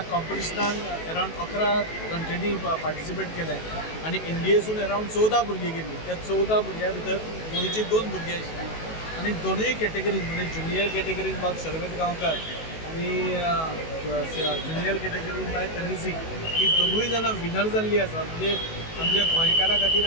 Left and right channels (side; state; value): right; late; 19 ms